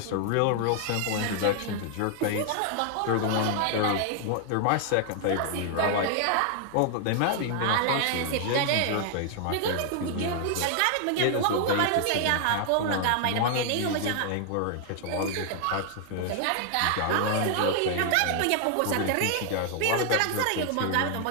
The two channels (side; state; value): both; different; correlation 0.00